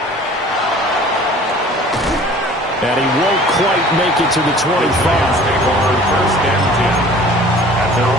And he won't quite make it to the 25. First and 10 at their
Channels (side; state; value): both; normal; correlation 0.48